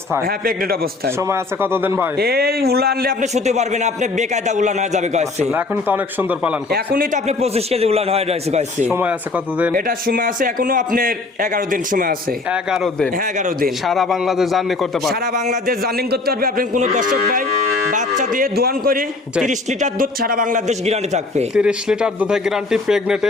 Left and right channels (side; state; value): right; quieter; 3.5 dB